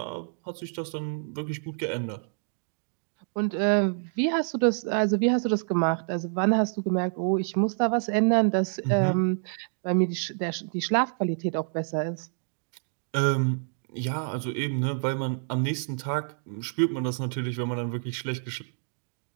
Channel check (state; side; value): silent; left; digital silence